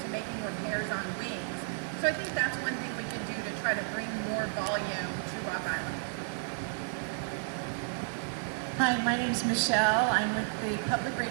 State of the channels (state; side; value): silent; left; digital silence